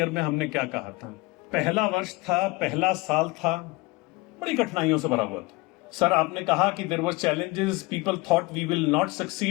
में हमने क्या कहा था। पहला वर्ष था, पहला साल था, बड़ी कठिनाइयों से भरा हुआ था। सर आपने कहा कि there was challenges, people thought we will not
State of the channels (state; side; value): quieter; right; 23.5 dB